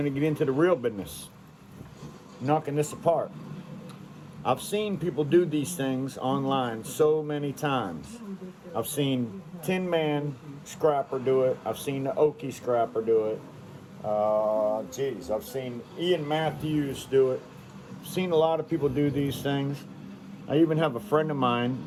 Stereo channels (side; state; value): both; identical; correlation 1.00